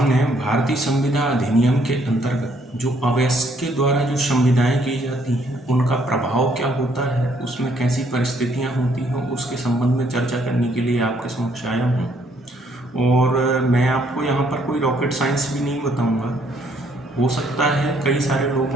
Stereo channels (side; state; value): both; normal; correlation 0.67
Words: भारतीय संविदा अधिनियम के अंतर्गत जो अवयस्क के द्वारा जो संविदाएं की जाती हैं उनका प्रभाव क्या होता है, उसमें कैसी परिस्थितियां होती हैं, उसके संबंध में चर्चा करने के लिए आपके समक्ष आया हूं। और मैं आपको यहाँ पर कोई रॉकेट साइंस भी नहीं बताऊंगा। हो सकता है कई सारे